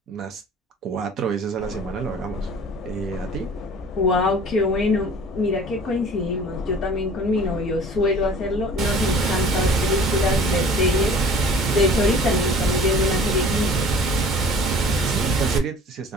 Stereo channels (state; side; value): normal; both; correlation 0.47